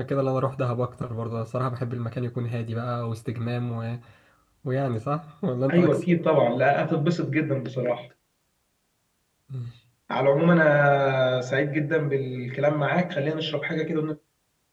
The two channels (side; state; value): both; identical; correlation 1.00